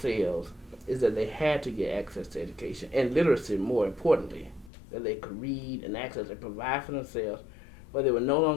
is that they had to get access to education and literacy. More importantly, that they could read and access and provide for themselves, but they would no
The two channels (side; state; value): right; drops out; at 4.7 s